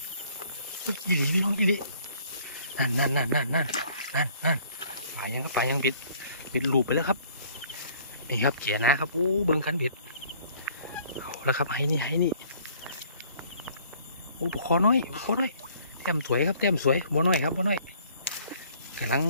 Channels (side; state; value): both; inverted; correlation -0.58